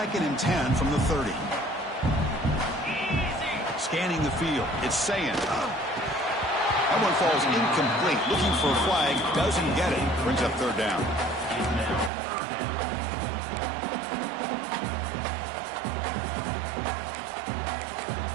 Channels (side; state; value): left; drops out; at 12.1 s